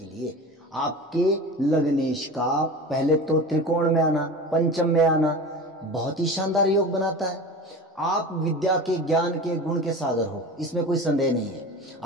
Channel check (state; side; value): normal; both; correlation 0.33